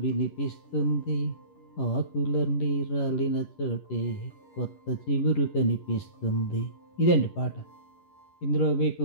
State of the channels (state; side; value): late; right; 11 ms